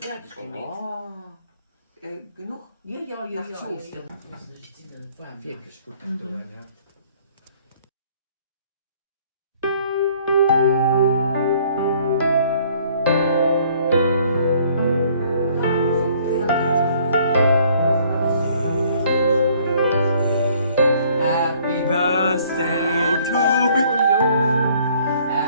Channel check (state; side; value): inverted; both; correlation -0.60